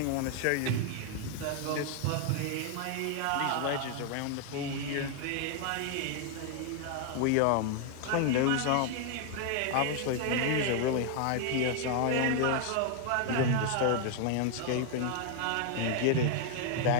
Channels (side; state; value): both; different; correlation 0.00